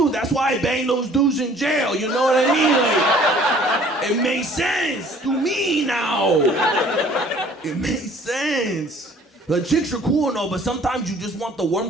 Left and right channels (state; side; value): normal; both; correlation 0.54